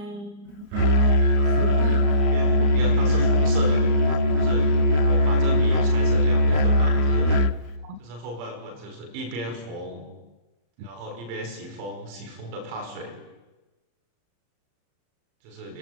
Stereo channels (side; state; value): left; late; 34 ms